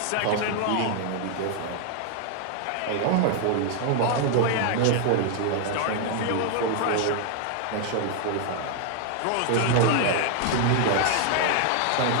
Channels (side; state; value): both; different; correlation 0.00